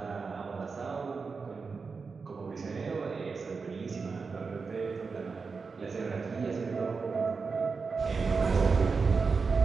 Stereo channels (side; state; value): left; quieter; 4.8 dB